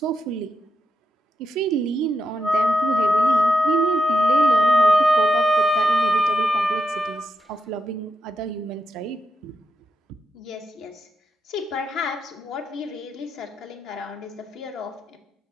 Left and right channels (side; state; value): both; normal; correlation 0.84